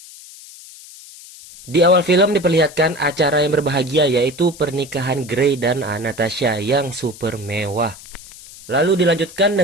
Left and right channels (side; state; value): left; noise; hiss, 18 dB below the sound